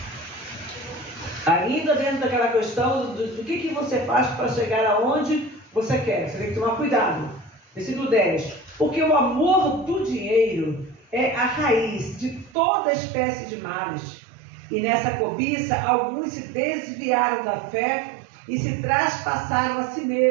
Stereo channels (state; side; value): drops out; left; at 12.6 s